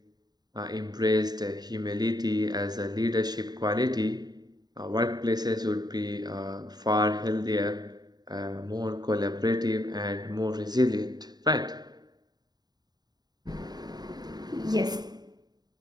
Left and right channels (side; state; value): left; late; 0.20 ms